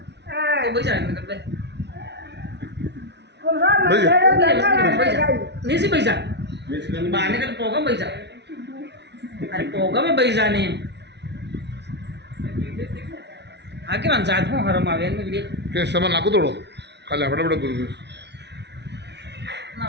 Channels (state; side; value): late; left; 0.50 ms